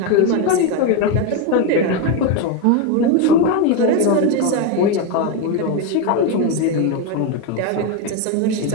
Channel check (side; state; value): both; different; correlation 0.03